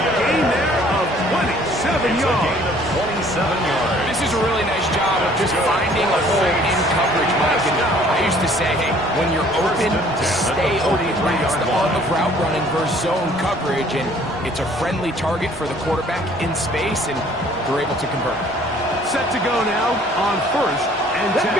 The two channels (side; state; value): both; normal; correlation 0.56